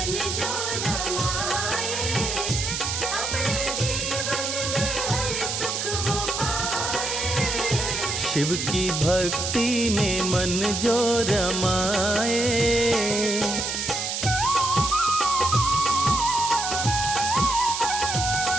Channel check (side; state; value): right; noise; hiss, 2 dB below the sound